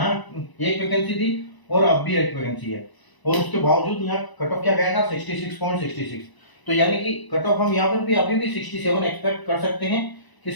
एक वैकेंसी थी और अब भी एक वैकेंसी है, और उसके बावजूद यहाँ कट ऑफ क्या गया था 66.66। तो यानी कि कट ऑफ हम यहाँ पर भी अभी भी 67 एक्सपेक्ट कर सकते हैं कि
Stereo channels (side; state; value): right; late; 1.0 ms